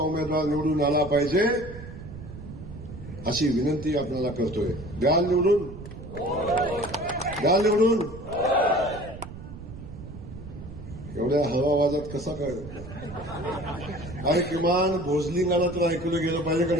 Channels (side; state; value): right; noise; rumble, 13 dB below the sound